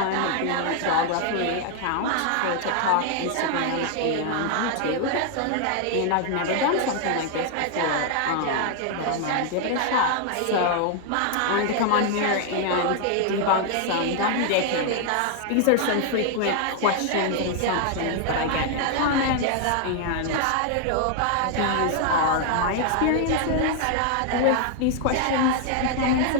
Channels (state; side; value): different; both; correlation 0.00